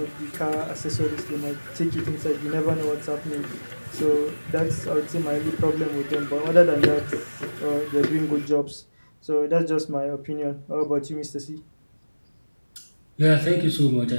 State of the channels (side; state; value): both; inverted; correlation -1.00